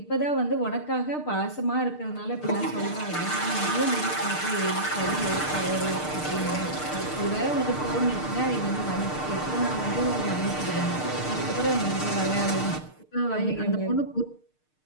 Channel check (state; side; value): late; right; 6.6 ms